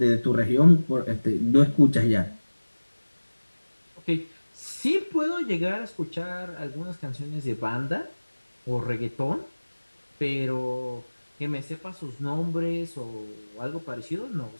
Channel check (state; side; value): inverted; both; correlation -1.00